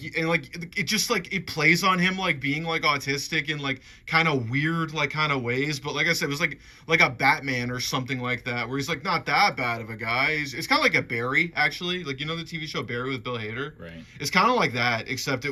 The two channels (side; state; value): both; identical; correlation 1.00